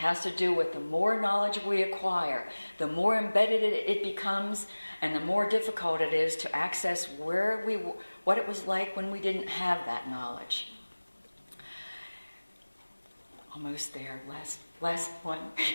to do with the more knowledge we acquire, the more embedded it becomes, and the more difficult it is to access what it was like when we didn't have that knowledge. Almost there, last one.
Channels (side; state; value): both; inverted; correlation -1.00